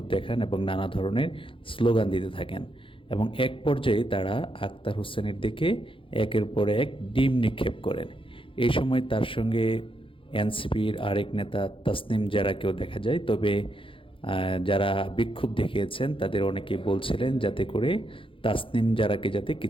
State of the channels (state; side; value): late; right; 0.25 ms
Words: দেখান এবং নানা ধরনের স্লোগান দিতে থাকেন, এবং এক পর্যায়ে তারা আখতার হোসেনের দিকে একের পর এক ডিম নিক্ষেপ করেন। এই সময় তার সঙ্গে এনসিপির আরেক নেতা তাসনিম জারাকেও দেখা যায়। তবে যারা বিক্ষোভ দেখিয়েছেন তাদের অনেকেই বলছিলেন যাতে করে তাসনিম জারাকে যাতে